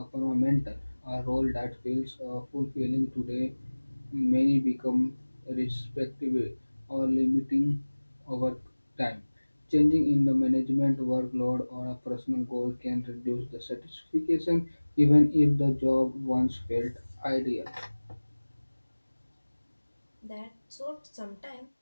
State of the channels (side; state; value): both; inverted; correlation -1.00